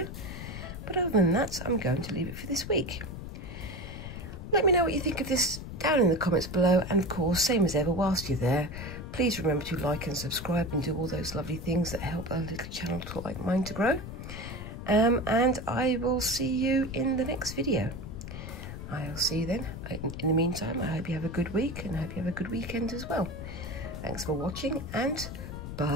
But other than that, I'm going to leave it for this week. Let me know what you think of this down in the comments below. And of course, same as ever, whilst you're there, please remember to like and subscribe and do all those lovely things that help a little channel like mine to grow. And I will see you in the next video. I'll see you then. In the meantime, I hope you have a good week and I hope you have a good weekend as well. Thanks for watching and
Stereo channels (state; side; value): noise; left; rumble, 9 dB below the sound